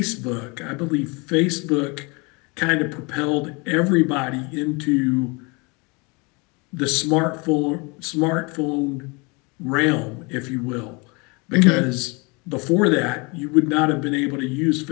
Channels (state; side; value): quieter; right; 28.9 dB